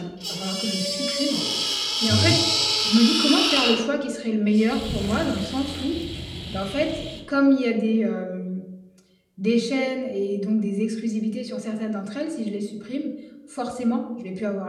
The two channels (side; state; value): both; identical; correlation 1.00